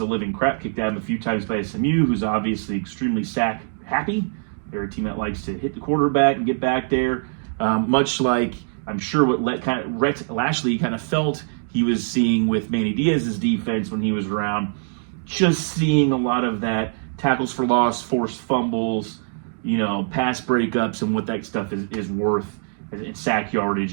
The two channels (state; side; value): silent; left; digital silence